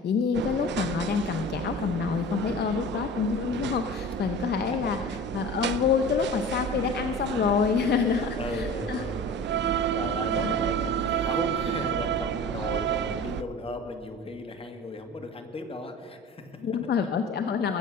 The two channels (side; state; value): both; normal; correlation 0.38